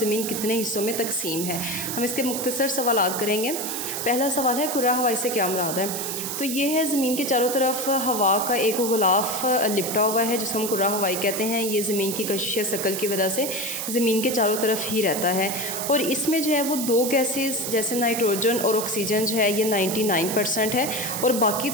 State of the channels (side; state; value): right; noise; hiss, 4 dB below the sound